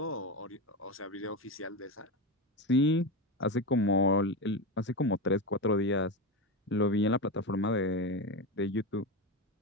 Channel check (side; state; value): both; normal; correlation 0.17